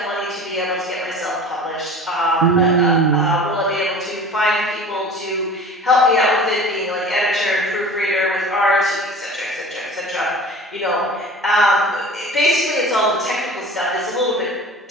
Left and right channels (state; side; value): normal; both; correlation 0.40